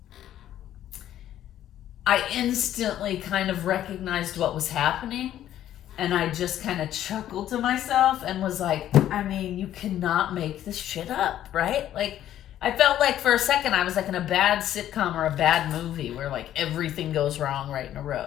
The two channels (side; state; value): right; quieter; 11.9 dB